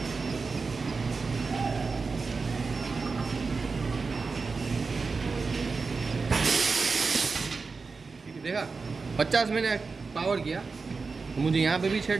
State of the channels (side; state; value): left; quieter; 4.4 dB